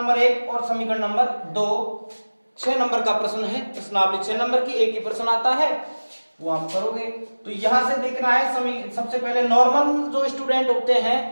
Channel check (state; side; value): inverted; both; correlation -1.00